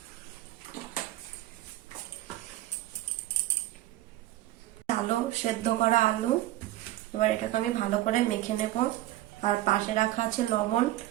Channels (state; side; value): quieter; left; 15.5 dB